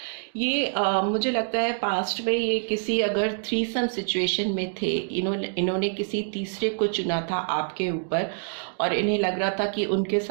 ये मुझे लगता है पास्ट में ये किसी अगर थ्रीसम सिचुएशन में थे, इन्होंने किसी तीसरे को चुना था आपके ऊपर, और इन्हें लग रहा था कि उनके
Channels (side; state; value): left; silent; digital silence